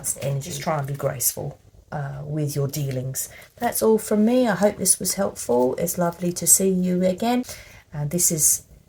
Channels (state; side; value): identical; both; correlation 1.00